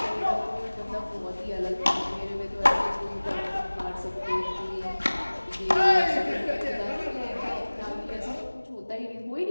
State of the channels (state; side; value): inverted; both; correlation -1.00